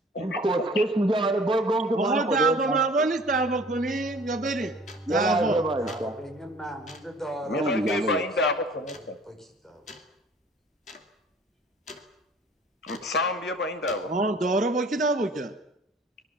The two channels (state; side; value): normal; both; correlation 0.50